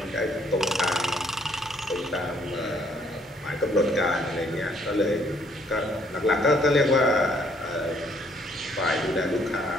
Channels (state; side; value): normal; both; correlation 0.66